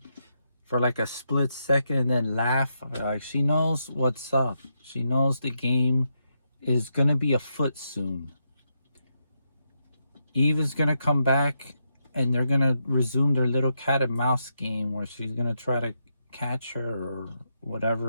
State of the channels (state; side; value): inverted; both; correlation -0.82